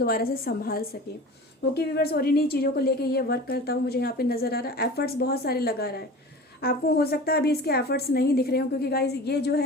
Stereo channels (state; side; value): normal; both; correlation 0.37